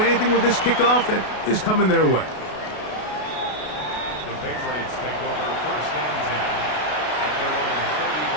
with this kickoff that is coming their way. The Patriots take over 1st and 10.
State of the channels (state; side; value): late; right; 33 ms